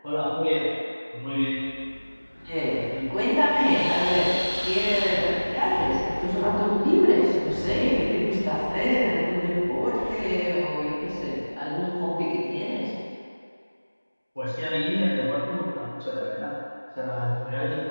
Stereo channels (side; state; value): both; inverted; correlation -1.00